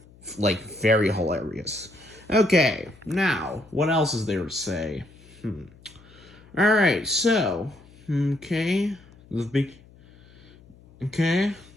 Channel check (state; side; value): noise; left; hum, 25 dB below the sound